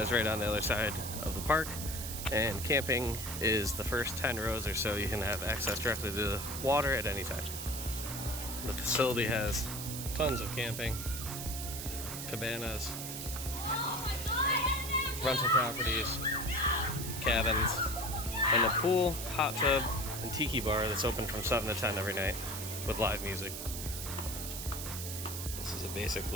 right on the other side of the park, and camping is the first 10 rows or so. You can have access directly to the water at any time. The facility has tons of camping, cabanas, rental properties, cabins, and a pool, hot tub, and tiki bar that's open from 7 to 10 every night with live music. This is a basic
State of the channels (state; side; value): noise; right; hiss, 6 dB below the sound